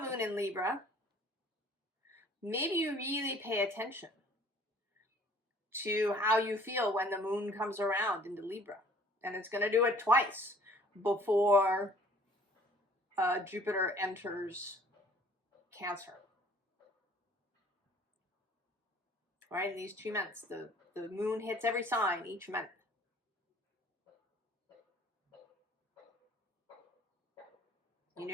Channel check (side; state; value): both; normal; correlation 0.54